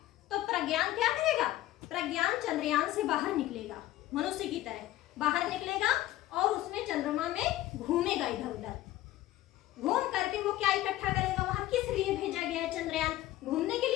तो प्रज्ञान क्या करेगा? प्रज्ञान चंद्रयान से बाहर निकलेगा, मनुष्य की तरह बाहर निकलेगा और उसमें चंद्रमा में घूमेगा इधर उधर। घूम करके वो क्या इकट्ठा करेगा? वहां किस लिए भेजा गया है चंद्रयान? घूमने के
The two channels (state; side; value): quieter; right; 15.2 dB